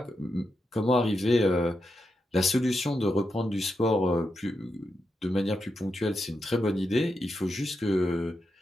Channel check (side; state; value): both; normal; correlation 0.85